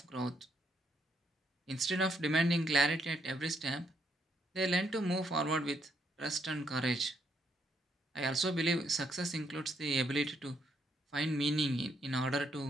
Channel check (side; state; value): both; normal; correlation 0.75